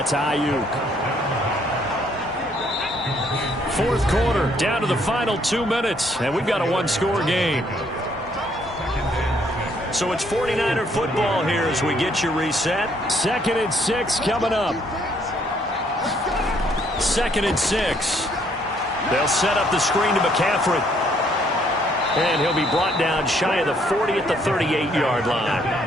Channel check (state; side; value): normal; both; correlation 0.67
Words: Ayuk. 4th quarter, down to the final 2 minutes, and we've got a 1-score game. So it's 49er football here as we get you reset. 2nd and 6 coming up. 2nd and 6. They'll set up the screen to McCaffrey. And he'll be brought down shy of the 40 at the 38-yard line.